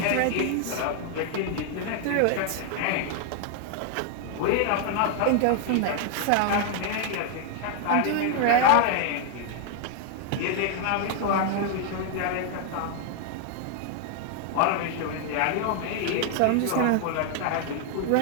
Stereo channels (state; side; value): different; both; correlation 0.00